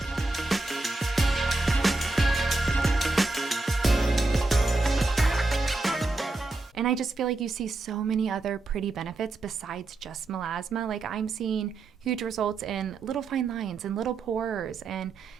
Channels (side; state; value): left; quieter; 3.2 dB